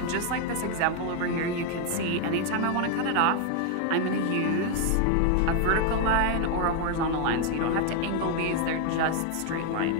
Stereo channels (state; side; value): different; both; correlation 0.01